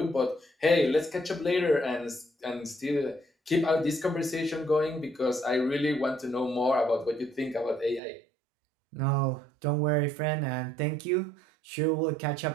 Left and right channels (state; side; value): drops out; left; at 8.0 s